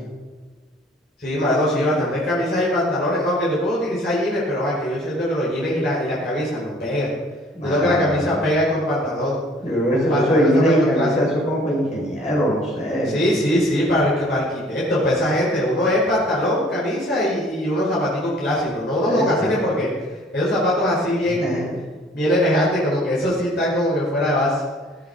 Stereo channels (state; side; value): normal; both; correlation 0.54